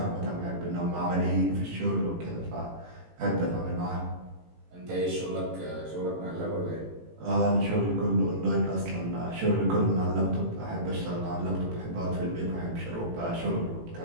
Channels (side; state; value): left; late; 18 ms